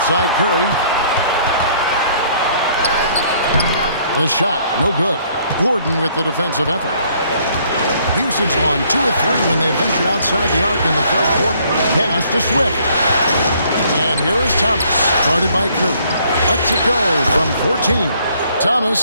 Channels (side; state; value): both; inverted; correlation -0.63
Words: side, Curry. The shot, no good. Gordon with the defensive effort. Houston's gone 2 of 3 when they ventured outside the arc in the third quarter. Pass to Swift. And here is Thomas, guarded by Curry. Lets it go from 14.